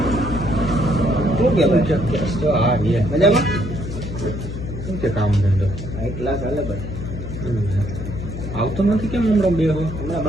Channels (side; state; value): left; noise; hum, 7 dB below the sound